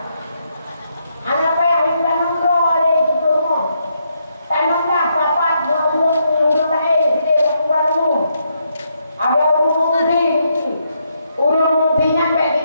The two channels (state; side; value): inverted; both; correlation -0.78